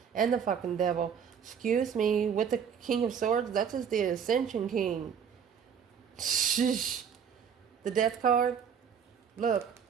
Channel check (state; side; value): quieter; left; 7.5 dB